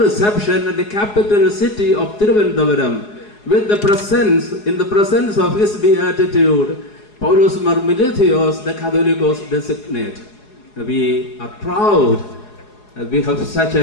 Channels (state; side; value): late; right; 4.8 ms